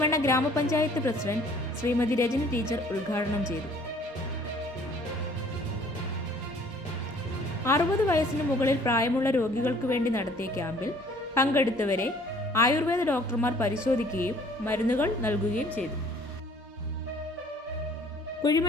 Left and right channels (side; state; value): both; normal; correlation 0.55